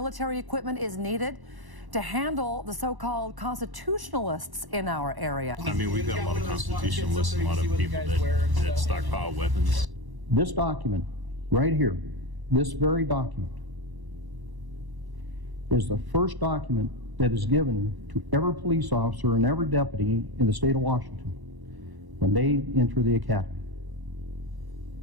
equipment is needed to handle the so-called constitutionalists in our area. I mean, we've got a lot of constitutionalists and a lot of people that stockpile weapons. This document right here, this very document, is the first document that is given to every police officer and every deputy in the state of Washington when they enter the academy.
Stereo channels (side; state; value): left; late; 1.0 ms